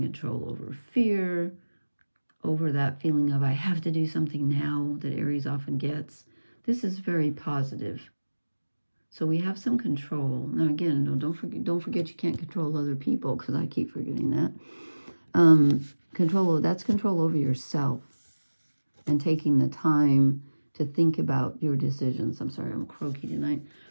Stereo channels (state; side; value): inverted; both; correlation -1.00